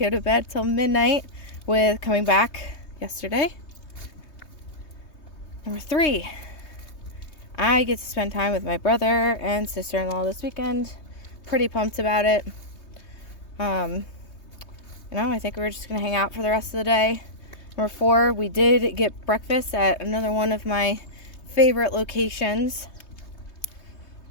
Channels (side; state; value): right; late; 3.2 ms